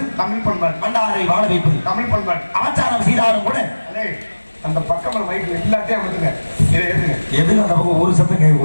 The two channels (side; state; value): both; inverted; correlation -1.00